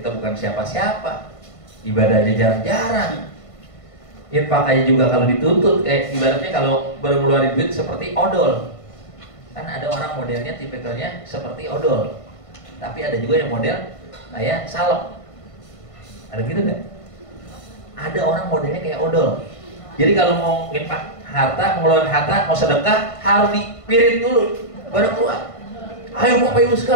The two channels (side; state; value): right; late; 1.5 ms